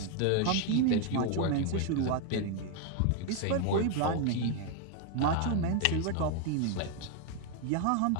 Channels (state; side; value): different; both; correlation 0.01